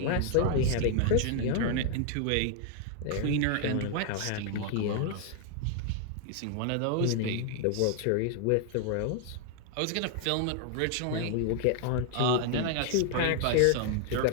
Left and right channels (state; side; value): different; both; correlation 0.00